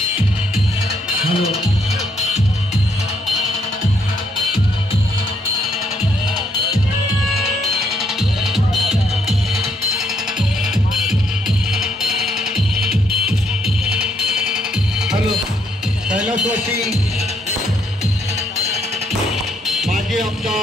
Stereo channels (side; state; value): both; normal; correlation 0.73